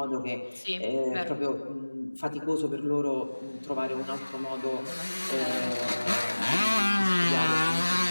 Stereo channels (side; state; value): both; inverted; correlation -1.00